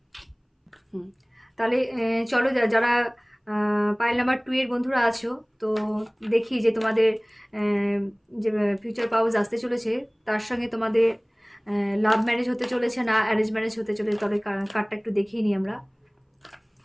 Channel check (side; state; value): both; identical; correlation 1.00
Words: তাহলে চলো যারা পাইল নাম্বার 2 এর বন্ধুরা আছো, তো দেখি যে তোমাদের যে ফিউচার পাউস আসতে চলেছে তার সঙ্গে তোমাদের লাভ ম্যারেজ হতে চলেছে না অ্যারেঞ্জ ম্যারেজ হতে চলেছে। তাহলে কার্ডটা একটু দেখিয়ে নিই আমরা